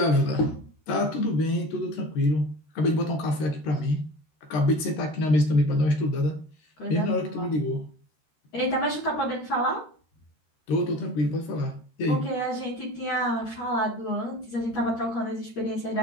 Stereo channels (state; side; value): late; right; 13 ms